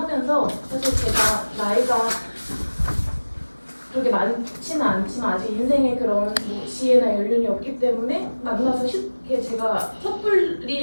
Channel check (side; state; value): both; inverted; correlation -1.00